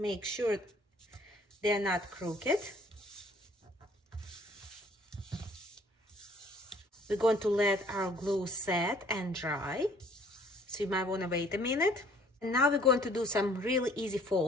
sure they're not crooked. We're going to let our glue set and dry, so you might want to wait a minute. And now we're going to do some really easy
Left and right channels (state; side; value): normal; both; correlation 0.57